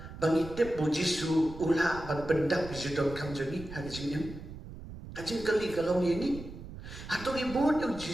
bangitip bo Jisu ula ban pendak bijudon kam joni hagajing yam kajing kali kalau ni hato ni bod yu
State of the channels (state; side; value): noise; right; rumble, 13 dB below the sound